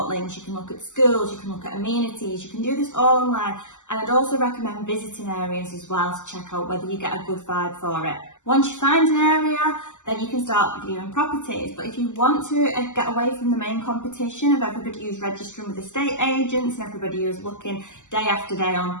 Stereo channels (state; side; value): late; right; 0.85 ms